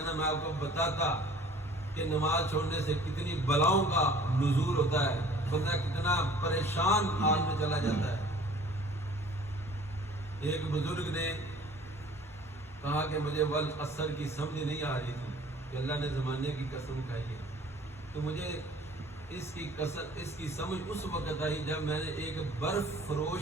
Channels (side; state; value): both; normal; correlation 0.50